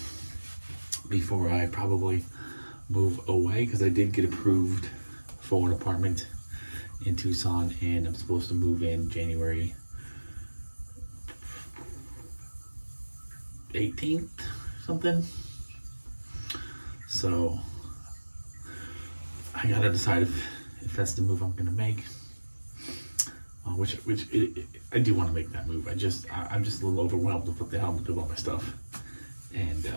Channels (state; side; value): inverted; both; correlation -1.00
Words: before I probably move away, because I did get approved for an apartment in Tucson, and I'm supposed to move in January 18th, something. So I gotta decide if that's the move I'm gonna make. I do want to make that move. I'm just a little overwhelmed with what the hell I'm gonna do about my stuff, and